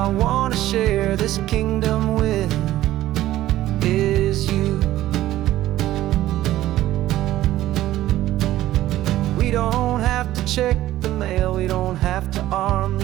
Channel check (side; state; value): left; quieter; 14.5 dB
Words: want to share this kingdom with is you. We don't have to check the mail, we don't have to arm